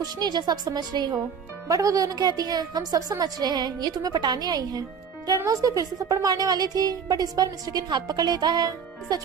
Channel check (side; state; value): left; quieter; 6.6 dB